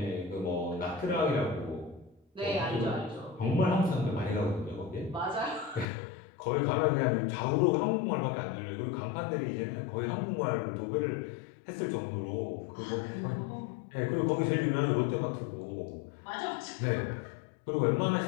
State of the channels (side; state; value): right; drops out; at 5.9 s